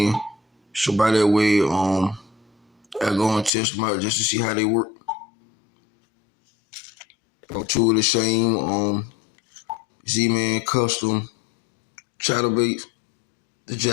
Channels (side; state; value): right; drops out; at 3.5 s